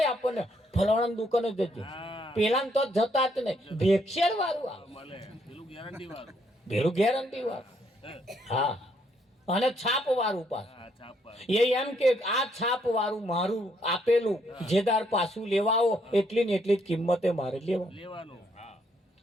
આપણને ફલાણા દુકાને જજો, પેલા તો જતા જ નહીં, ભેક્ષેર વાળું આવે, પેલું ગેરંટી વાળું. હા, અને છાપ વાળું પાછું. હા, છાપા. એ એમ કે આ છાપ વાળું મારું આપેલું જેદાર પાછું લેવા આવો એટલી ને એટલી જ કિંમતે મારે લેવા, લેવાનું. હા,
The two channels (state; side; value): normal; both; correlation 0.72